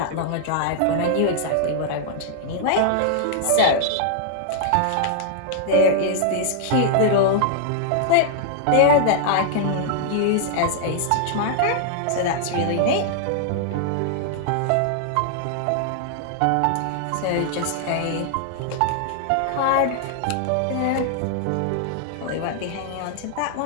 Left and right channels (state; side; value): different; both; correlation -0.01